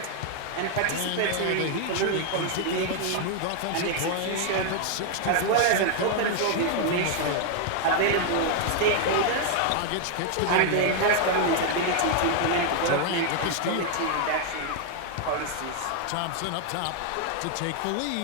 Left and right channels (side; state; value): both; different; correlation 0.00